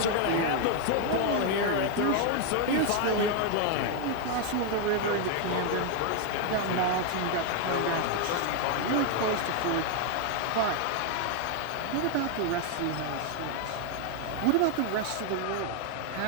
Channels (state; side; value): different; both; correlation 0.00